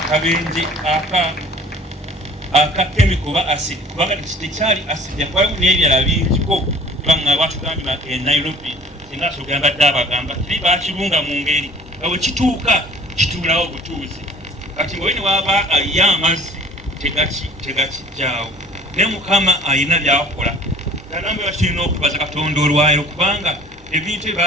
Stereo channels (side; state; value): both; normal; correlation 0.48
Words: aka chemical ba acid kubanga tekyali acid yakwayo n'ebirala bingiko banga batugambye e Nairobi singa sogamba dabagamba kiri bakirunga mu ngeri awo kituuka kitulawo butuuzi kati bwe waba ayamazzi tegakijjaawo ne Mukama ayina byakola nambe bakirina okubaza Katonda olwayo kubanga ebintu